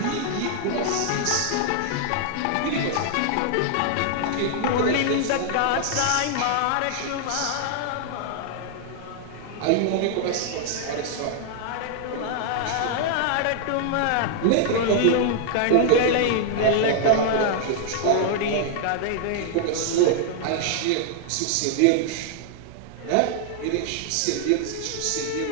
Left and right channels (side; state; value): both; different; correlation 0.00